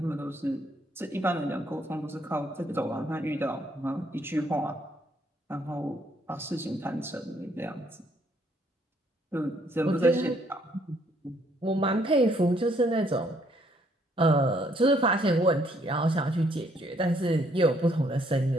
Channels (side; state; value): both; normal; correlation 0.68